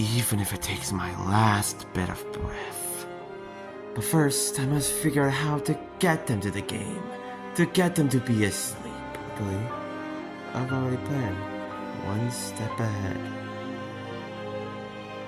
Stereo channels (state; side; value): identical; both; correlation 1.00